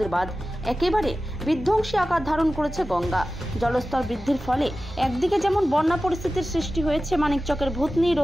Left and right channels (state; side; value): normal; both; correlation 0.95